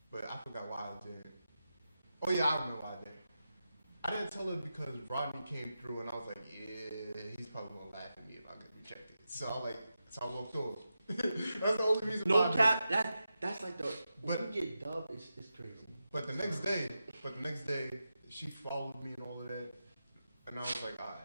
but I forgot why I didn't. Oh yeah, I remember why I didn't. I didn't tell her because Rodney came through and I was like, yeah, he's probably gonna laugh at me if I get rejected. So I walked off. That's the only reason why. No cap. That's like the. When But- you get dubbed, it's crazy. But the next day, she followed me and all of that, and I was like, all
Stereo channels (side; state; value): both; inverted; correlation -0.90